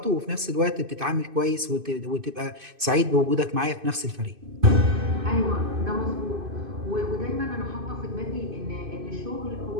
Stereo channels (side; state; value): left; late; 2.5 ms